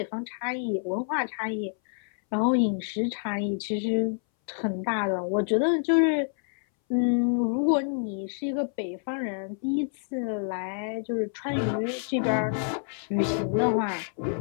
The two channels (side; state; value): right; silent; 60 dB below the other